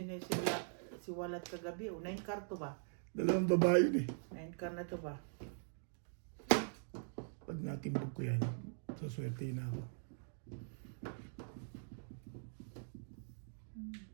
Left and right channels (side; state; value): left; silent; digital silence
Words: siwalat kagabi. O, 9 car to ba? Dalawang babae yun eh. 9 car na to ba? Pag natimbog ko yan, saswerte na ako.